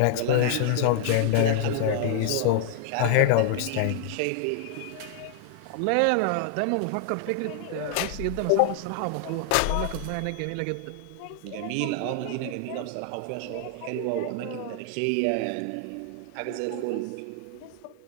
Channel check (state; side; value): different; both; correlation 0.00